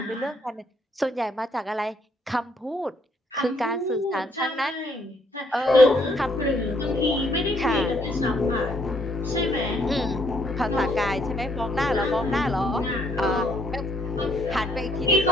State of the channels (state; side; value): normal; both; correlation 0.69